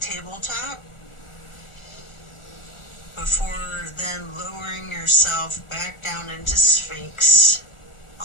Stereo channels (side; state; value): right; late; 1.4 ms